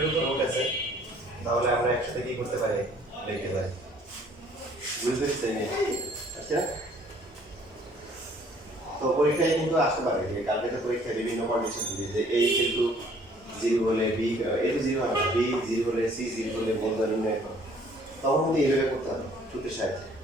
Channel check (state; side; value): normal; both; correlation 0.58